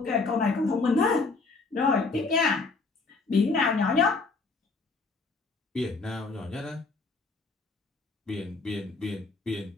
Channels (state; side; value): quieter; right; 3.9 dB